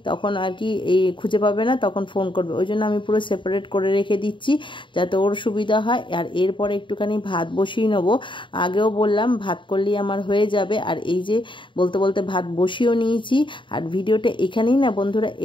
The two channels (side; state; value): right; late; 0.24 ms